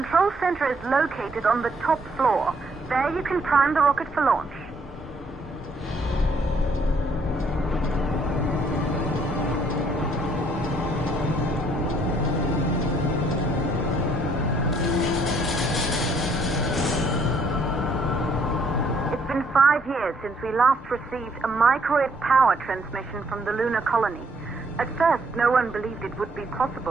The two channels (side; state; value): both; normal; correlation 0.67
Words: center is located on the top floor. There you can prime the rocket for launch. It's been 5 years since we last received a microwave power transmission from the lunar colony. At first, no one believed it would be